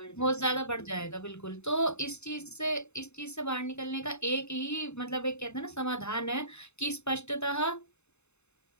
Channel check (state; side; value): late; right; 0.81 ms